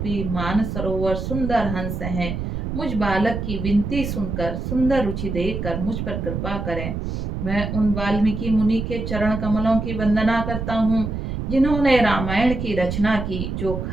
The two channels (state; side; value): noise; right; rumble, 4 dB below the sound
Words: मान सरोवर सुंदर हंस हैं, मुझ बालक की विनती सुनकर सुंदर रुचि देखकर मुझ पर कृपा करें। मैं उन वाल्मीकि मुनि के चरण कमलों की वंदना करता हूँ, जिन्होंने रामायण की रचना की, जो